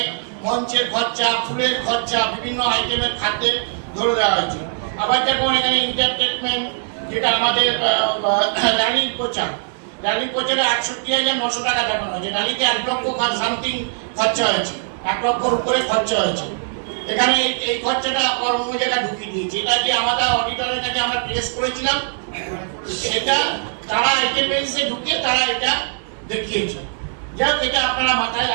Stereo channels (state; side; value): silent; left; digital silence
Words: মঞ্চের খরচা, ফুলের খরচা, বিভিন্ন আইটেমের খাদ্যের ধরে দেওয়া হয়েছে। আবার যেমন এখানে এন্টারটেনমেন্ট, যেটা আমাদের র্যালি প্রচার, র্যালি প্রচারে ৬১,৯০০ টাকা দেখানো হয়েছে। র্যালিতে 1 লক্ষ সামথিং খরচা হয়েছে, 1 লক্ষর উপরে খরচা হয়েছে। এখানে এই খরচাটা অন্য জায়গায় ঢুকিয়ে দিয়েছে। এটা যে আমাদের অডিটরের কাছে আমরা প্লেস করেছিলাম, সেটা তারা আইটেমে ঢুকিয়ে তারা এটা দেখিয়েছে। যাক, এটা আপনারা মাথায়